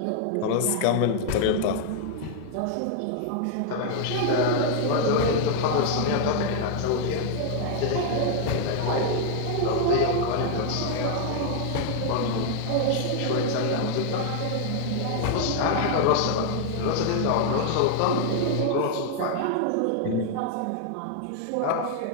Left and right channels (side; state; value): both; different; correlation 0.00